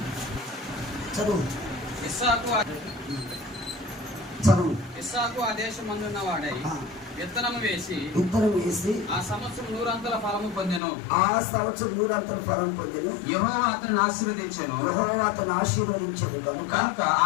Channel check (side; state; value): right; drops out; at 10.8 s